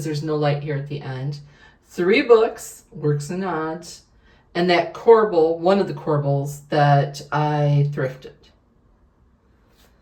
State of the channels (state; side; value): identical; both; correlation 1.00